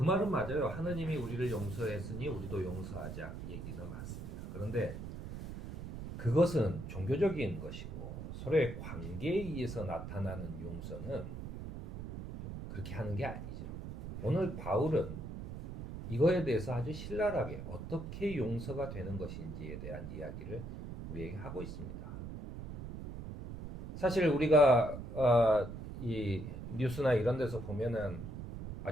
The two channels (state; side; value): noise; right; rumble, 8 dB below the sound